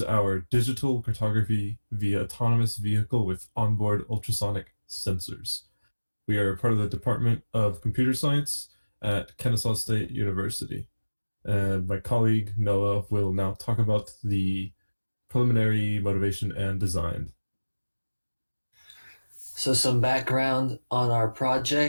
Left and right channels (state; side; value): inverted; both; correlation -1.00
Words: our digital cartography via autonomous vehicle with onboard ultrasonic sensors. We are part of the Department of Computer Science at Kennesaw State University. And my colleague Noah will now talk about the preliminary motivation and design. So some background on our